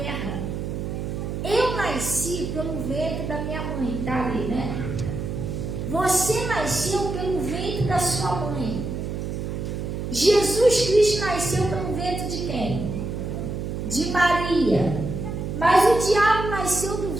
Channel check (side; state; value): right; noise; hum, 4 dB below the sound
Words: Eu nasci pelo ventre da minha mãe, tá ali, né? Você nasceu pelo ventre da sua mãe. Jesus Cristo nasceu pelo ventre de quem? De Maria. Mas o diabo nasceu do